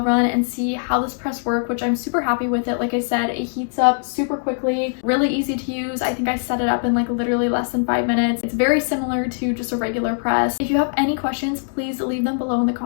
run and see how this press worked, which I'm super happy with it. Like I said, it heats up super quickly, really easy to use. I think I set it up in like literally less than 5 minutes. It's very similar to just a regular press. If you have any questions, please leave them below in the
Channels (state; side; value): silent; right; digital silence